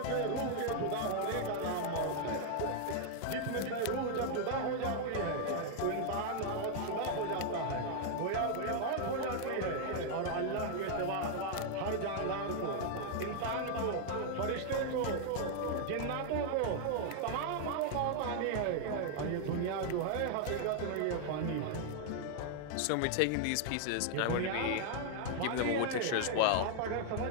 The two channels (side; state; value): both; different; correlation 0.00